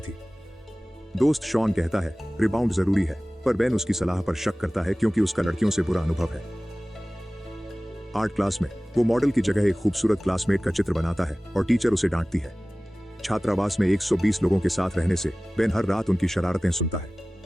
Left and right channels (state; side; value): normal; both; correlation 0.98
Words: दोस्त शॉन कहता है रिबाउंड जरूरी है, पर बेन उसकी सलाह पर शक करता है क्योंकि उसका लड़कियों से बुरा अनुभव है। आर्ट क्लास में वो मॉडल की जगह एक खूबसूरत क्लासमेट का चित्र बनाता है और टीचर उसे डांटती है। छात्रावास में 120 लोगों के साथ रहने से बेन हर रात उनकी शरारतें सुनता है।